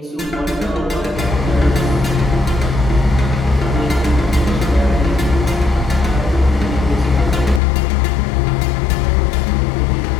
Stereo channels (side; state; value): right; drops out; at 7.6 s